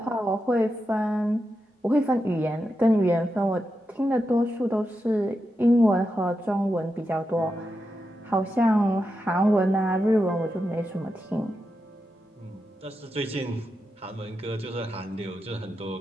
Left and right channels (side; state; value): both; normal; correlation 0.88